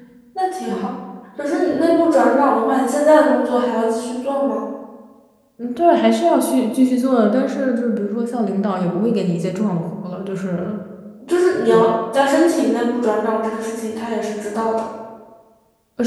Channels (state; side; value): identical; both; correlation 1.00